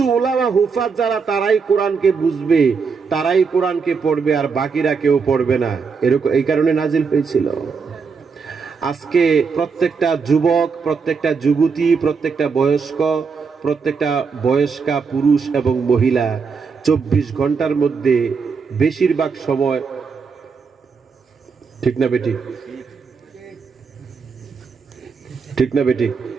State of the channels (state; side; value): quieter; left; 5.4 dB